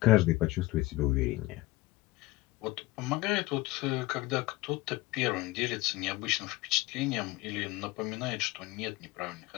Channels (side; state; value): right; quieter; 19.9 dB